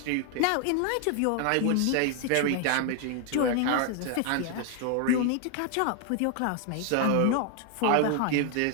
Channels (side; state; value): both; different; correlation 0.00